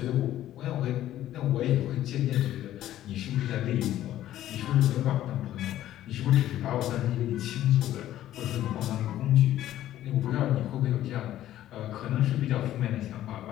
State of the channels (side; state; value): right; quieter; 13.0 dB